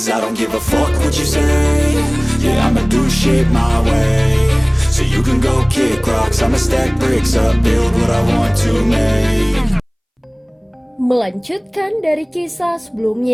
I don't give a fuck what you say. Yeah, I'ma do shit my way. So you can go kick rocks, I'ma stack bricks up, build what I want to make. Melanjutkan dari kisah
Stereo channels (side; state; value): both; identical; correlation 1.00